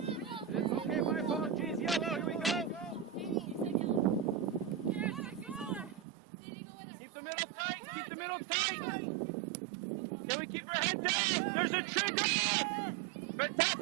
Okay, my apologies. Yellow, here we go. Keep the middle tight. Keep the middle tight. Can we keep our head down? There's a trigger.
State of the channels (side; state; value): left; drops out; at 6.1 s